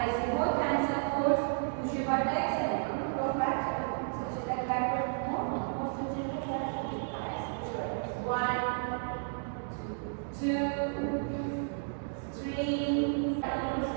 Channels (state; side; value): silent; left; digital silence